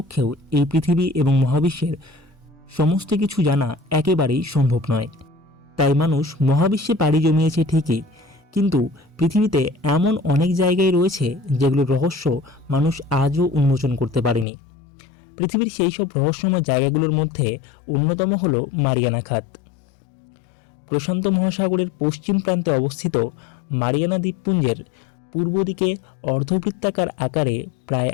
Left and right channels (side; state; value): right; drops out; at 14.5 s